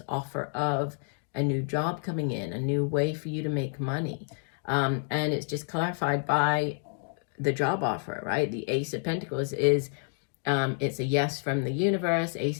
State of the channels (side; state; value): right; silent; 58 dB below the other